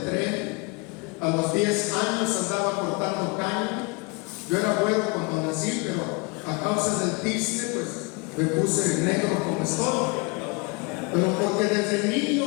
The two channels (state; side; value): quieter; right; 29.2 dB